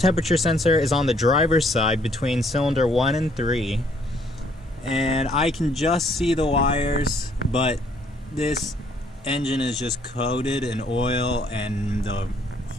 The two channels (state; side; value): normal; both; correlation 0.65